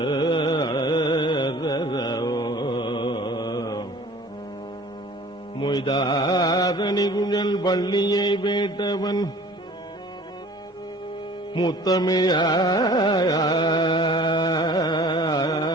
மொய்தாரணி குழல் வள்ளியை வேட்டவன்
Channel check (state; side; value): normal; both; correlation 0.48